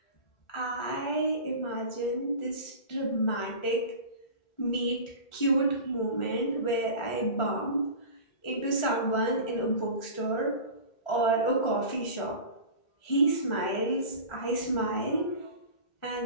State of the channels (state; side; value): late; right; 1.4 ms